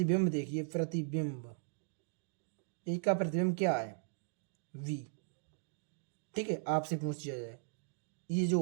देखिए, प्रतिबिंब, एक का प्रतिबिंब क्या है, v, ठीक है। आपसे पूछ दिया जाए, ये जो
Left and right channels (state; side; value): silent; left; digital silence